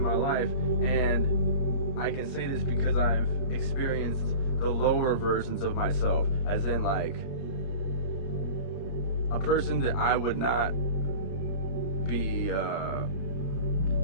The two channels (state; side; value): late; right; 31 ms